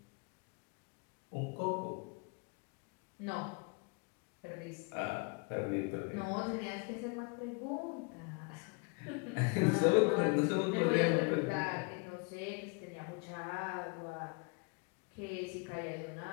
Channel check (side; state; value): right; quieter; 32.7 dB